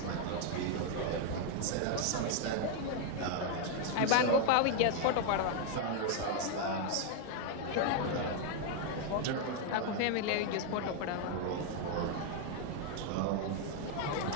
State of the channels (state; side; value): different; both; correlation 0.00